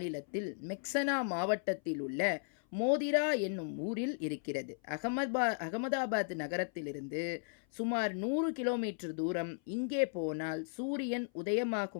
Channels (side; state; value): right; silent; 54 dB below the other